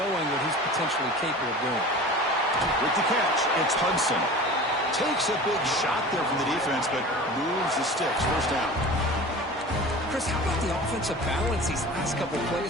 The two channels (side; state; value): both; normal; correlation 0.37